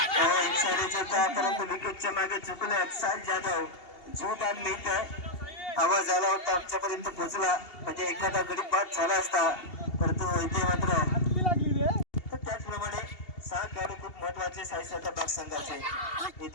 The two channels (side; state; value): right; late; 2.8 ms